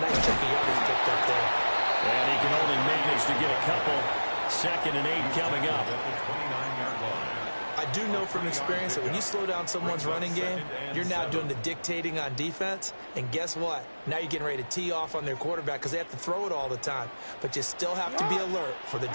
chunk of yardage picked up there. And he can only manage to get a couple. 2nd and 8 coming up. I do know from experience that when you slow down someone's running game, you're now doing the dictating on defense. And guess what? Now you're getting ready to tee off on their quarterback because they have to throw it all the time. But you still have to be alert for the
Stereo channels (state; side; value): inverted; both; correlation -1.00